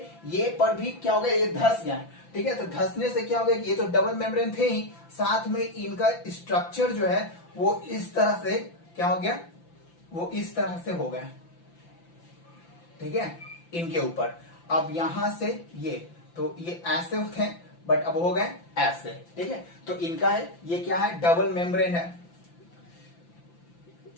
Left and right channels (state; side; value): late; right; 5.9 ms